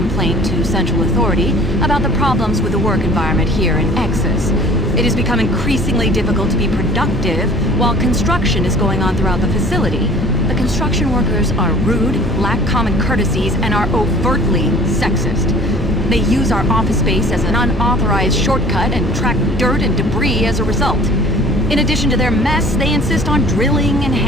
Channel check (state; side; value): normal; both; correlation 0.49